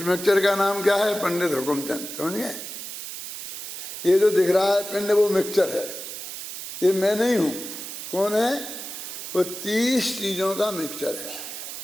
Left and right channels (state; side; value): noise; right; hiss, 8 dB below the sound